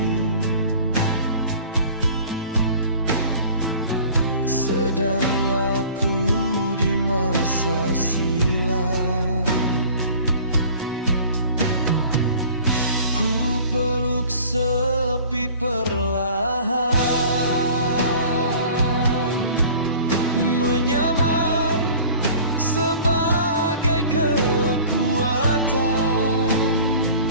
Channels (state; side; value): inverted; both; correlation -0.46